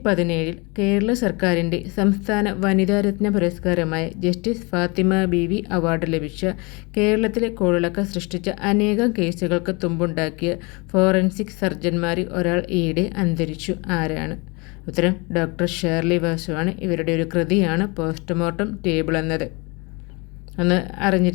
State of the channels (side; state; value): right; quieter; 28.3 dB